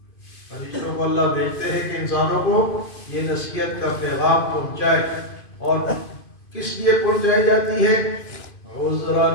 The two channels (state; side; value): late; right; 2.5 ms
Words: فرشتوں کو اللہ بھیجتے ہیں کہ انسانوں کو یہ نصیحت کا پیغام پہنچائے، اور کس لیے پہنچائی جاتی ہے؟ عذراً